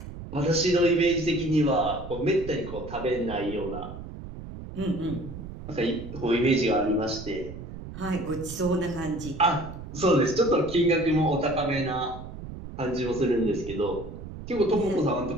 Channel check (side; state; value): right; noise; rumble, 11 dB below the sound